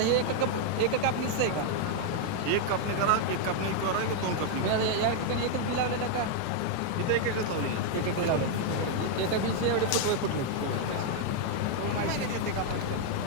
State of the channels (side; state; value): both; different; correlation 0.00